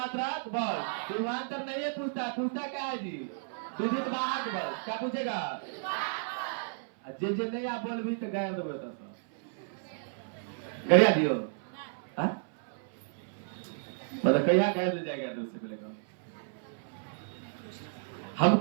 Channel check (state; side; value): silent; left; 56 dB below the other